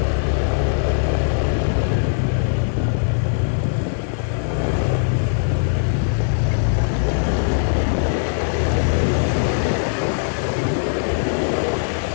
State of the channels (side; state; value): right; silent; 66 dB below the other